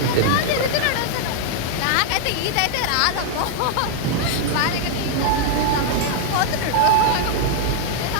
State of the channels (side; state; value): both; different; correlation 0.00